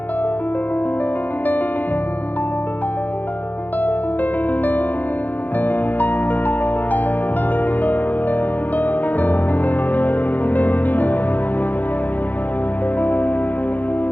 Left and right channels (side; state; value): right; late; 0.083 ms